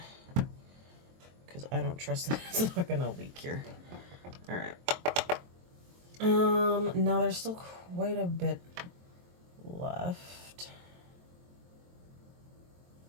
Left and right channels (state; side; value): late; left; 23 ms